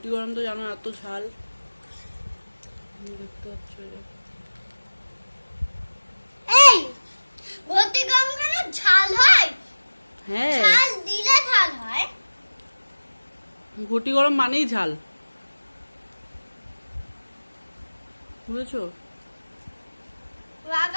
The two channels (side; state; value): both; inverted; correlation -1.00